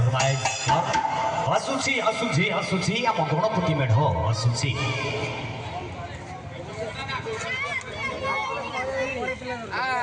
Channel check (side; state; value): both; identical; correlation 1.00